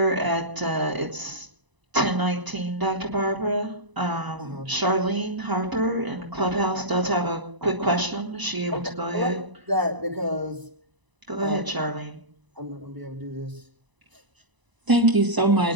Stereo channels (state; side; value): late; left; 1.0 ms